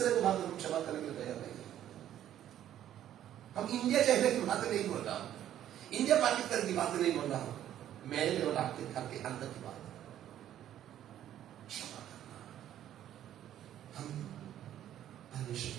को बात हम क्षमा करने के लिए तैयार नहीं। हम इंडिया चाइना की बात नहीं बोल रहा हूं, इंडिया पाकिस्तान की बात नहीं बोल रहा हूं, मेरे और आपके घर के अंदर की बात। क्षमा करना। हम परमेश्वर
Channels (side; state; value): left; quieter; 11.5 dB